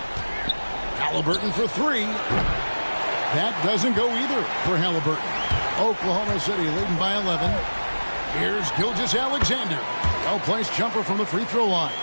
Halliburton for 3. That doesn't go either for Halliburton. Oklahoma City leading by 11. Here's Gilgeous-Alexander. Well-placed jumper from the free throw line.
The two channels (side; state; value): both; inverted; correlation -1.00